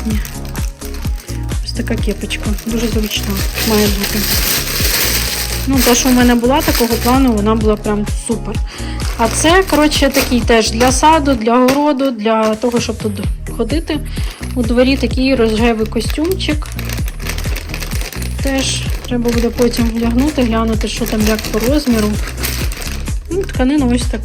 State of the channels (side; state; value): both; identical; correlation 1.00